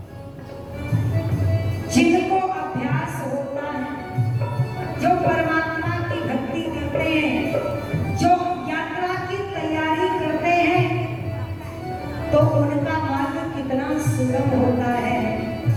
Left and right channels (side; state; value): both; identical; correlation 1.00